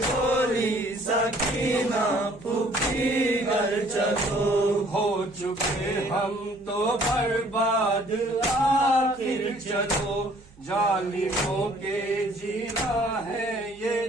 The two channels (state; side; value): noise; right; hum, 26 dB below the sound